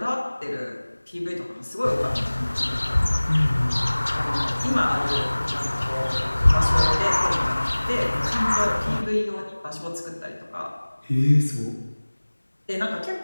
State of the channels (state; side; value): inverted; both; correlation -1.00